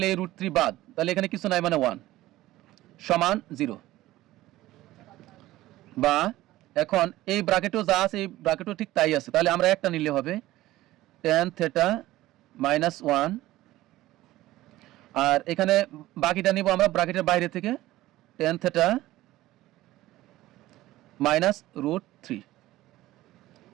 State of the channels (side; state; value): left; quieter; 16.3 dB